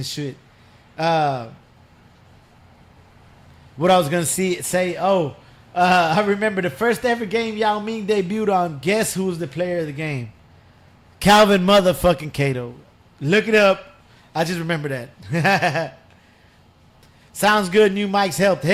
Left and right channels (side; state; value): both; identical; correlation 1.00